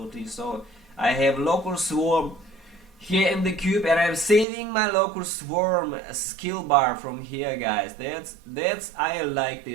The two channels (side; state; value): left; drops out; at 4.5 s